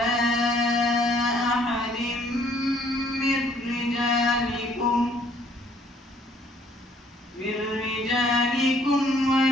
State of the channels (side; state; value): both; normal; correlation 0.62